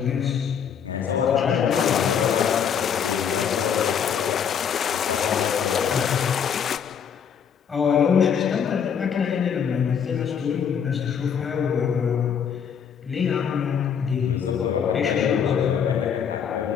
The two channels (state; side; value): quieter; right; 7.6 dB